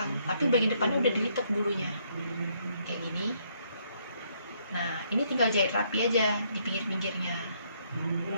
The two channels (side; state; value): both; inverted; correlation -0.71